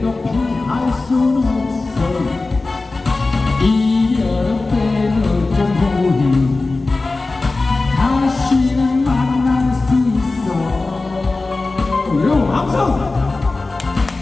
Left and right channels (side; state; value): right; quieter; 3.4 dB